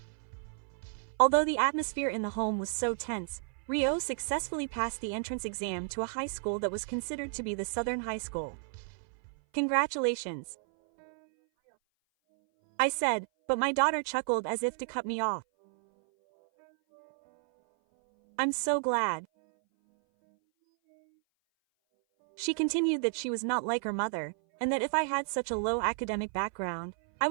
Although the atmosphere in the home was so tense, Rio successfully passed the entrance exam to a high school that was considered to be the Southern High School. "Congratulations," I said, but my daughter chuckled as if to cut me off. "I'm so glad." She continued that she was not like her mother, and that if I had such a low academic background, I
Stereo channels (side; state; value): left; silent; 57 dB below the other